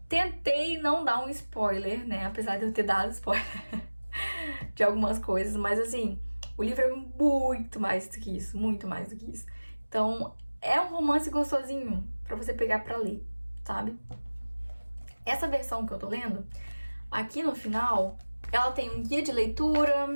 tentei não dar um spoiler, né? Apesar de eu ter dado spoiler de algumas coisas, mas assim, o livro é muito mais do que isso, muito mais do que isso. Então, é um romance gostosinho pra você pegar pra ler, sabe? Essa versão que eu tô lendo, aqui no final, ela tem um guia de leitura,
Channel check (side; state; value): both; inverted; correlation -1.00